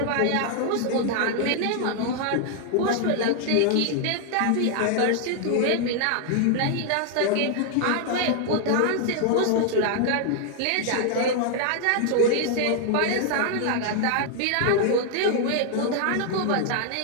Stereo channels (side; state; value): both; different; correlation 0.00